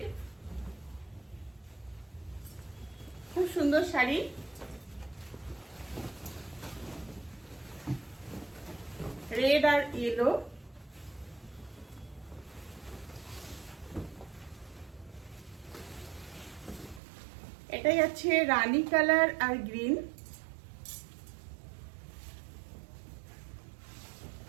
খুব সুন্দর শাড়ি। রেড আর ইয়েলো, এটাই আছে রানী কালার আর গ্রিন।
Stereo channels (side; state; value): left; drops out; at 17.0 s